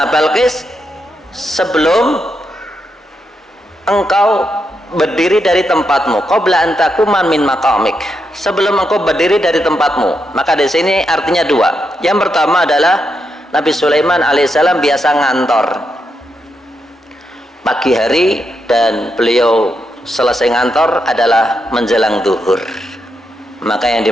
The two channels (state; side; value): normal; both; correlation 0.83